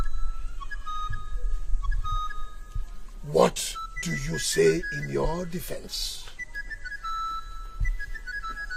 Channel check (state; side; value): identical; both; correlation 1.00